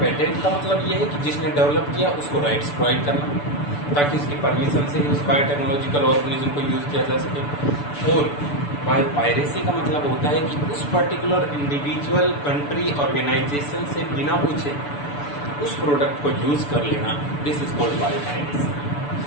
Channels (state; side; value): late; right; 6.9 ms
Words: पेटेंट का मतलब ये है कि जिसने डेवलप किया उसको राइट्स प्रोवाइड करना, ताकि उसकी परमिशन से ही उस बायोटेक्नोलॉजिकल ऑर्गेनिज्म को यूज किया जा सके। और बायोपायरेसी का मतलब होता है कि उस पर्टिकुलर इंडिविजुअल, कंट्री, ऑर्गेनाइजेशन से बिना पूछे उस प्रोडक्ट को यूज कर लेना, दिस इज कॉल्ड बायोपायरेसी।